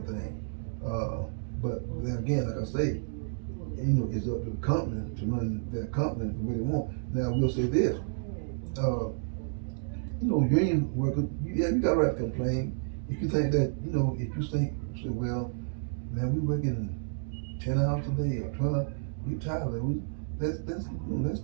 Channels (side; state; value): left; silent; digital silence